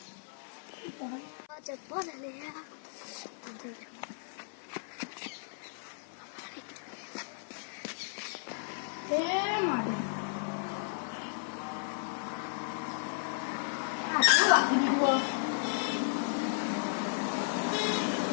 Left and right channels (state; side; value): silent; right; 55 dB below the other